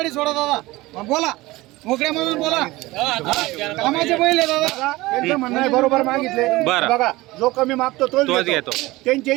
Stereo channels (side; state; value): left; quieter; 19.7 dB